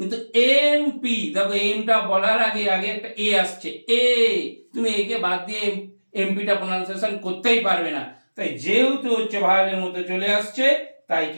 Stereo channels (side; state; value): both; inverted; correlation -1.00